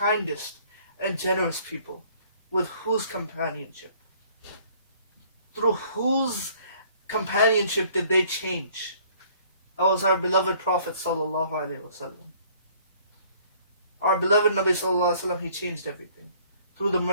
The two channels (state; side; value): inverted; both; correlation -0.58